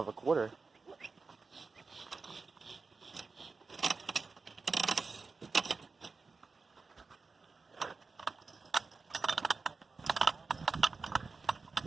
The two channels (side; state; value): left; quieter; 4.3 dB